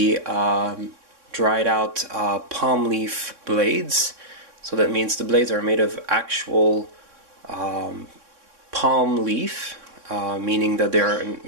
dried out palm leaf blades. So that means the blades are made of actual palm leaf, meaning that they're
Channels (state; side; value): late; left; 3.6 ms